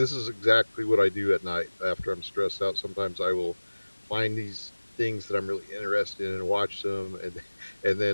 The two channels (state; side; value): inverted; both; correlation -1.00